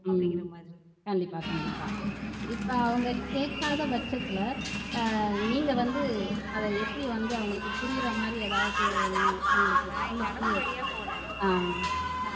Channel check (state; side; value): identical; both; correlation 1.00